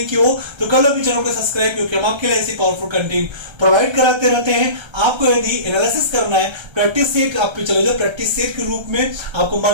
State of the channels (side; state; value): left; late; 1.3 ms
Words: किया हो तो कर लो भी चैनल को सब्सक्राइब, क्योंकि हम आपके लिए ऐसी पावरफुल कंटेंट प्रोवाइड कराते रहते हैं। आपको यदि एनालिसिस करना है, प्रैक्टिस सेट आप पे चले जाओ, प्रैक्टिस सेट के रूप में आपको